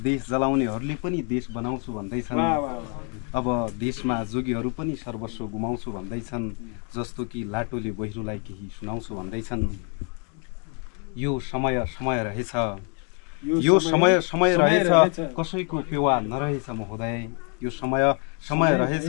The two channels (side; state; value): right; quieter; 38.6 dB